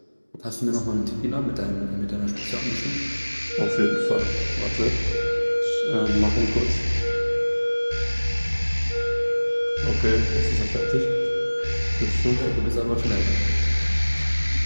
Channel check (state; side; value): inverted; both; correlation -1.00